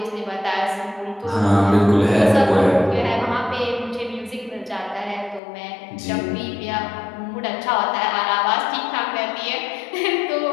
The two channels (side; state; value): right; drops out; at 5.4 s